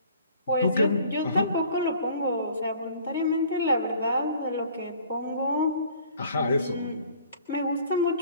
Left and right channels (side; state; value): both; inverted; correlation -0.52